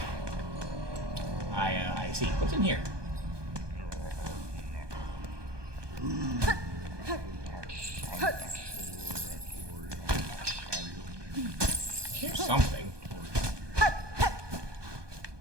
I see. What's in here? Here's something.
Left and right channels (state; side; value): late; left; 1.2 ms